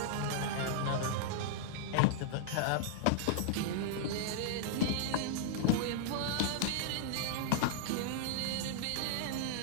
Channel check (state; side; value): different; both; correlation -0.01